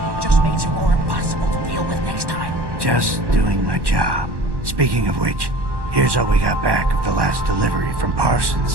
It just makes her more impossible to deal with next time. Just doing my job. Speaking of which, here's all we got back of the last delivery from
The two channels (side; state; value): left; late; 1.1 ms